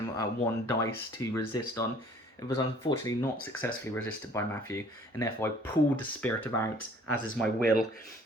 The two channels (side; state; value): both; normal; correlation 0.55